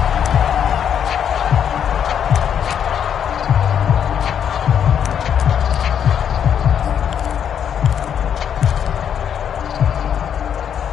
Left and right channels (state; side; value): quieter; right; 8.5 dB